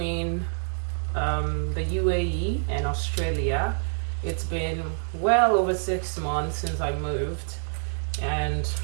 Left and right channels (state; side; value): silent; left; 60 dB below the other